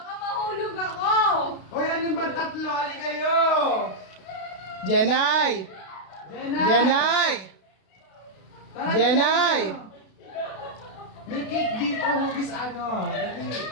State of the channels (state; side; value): late; right; 32 ms